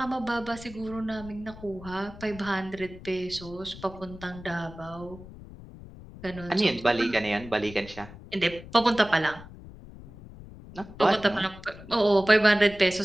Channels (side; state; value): left; noise; rumble, 16 dB below the sound